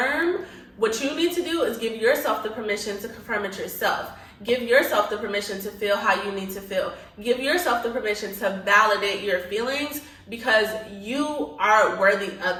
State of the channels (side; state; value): both; identical; correlation 1.00